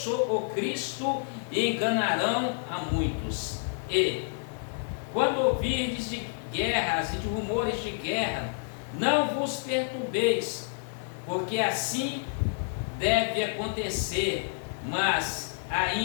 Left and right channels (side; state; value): right; silent; digital silence